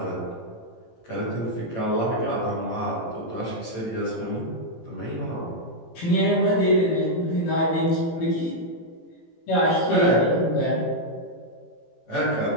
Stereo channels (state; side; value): late; right; 18 ms